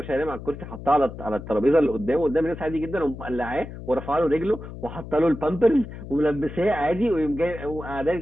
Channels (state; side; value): noise; left; hum, 12 dB below the sound